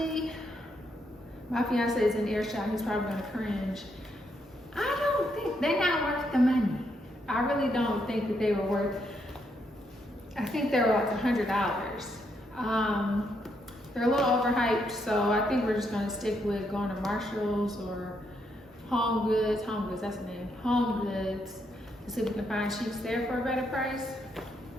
my fiance is in earshot. He's probably gonna cringe. I don't think they're not worth the money. I really don't think that they were worth. I think they were like $100. They're a little overhyped, so I think we're just gonna stick with going to Marshall's or Home Goods, that's the name, Home Goods to see if we can find sheets there for a better price.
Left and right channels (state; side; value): normal; both; correlation 0.77